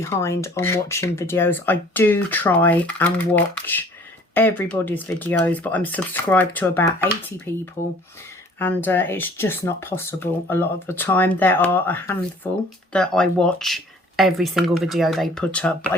on watching videos. I do try and watch everybody's videos, but I'm subscribed to about 80 people and it's just not possible a lot of the time. There are a handful that I watch every single video they put up, but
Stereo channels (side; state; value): both; normal; correlation 0.53